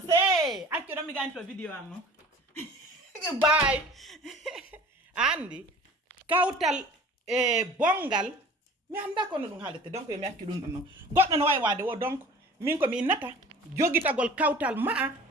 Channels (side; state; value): both; normal; correlation 0.44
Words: say accu do mi ganto video am no bye andi kawtal bongal mi anda ko no dum haalete donc mi accu dum non goddo no way wade wo donc min ko mi nata jogitagol kawtal ma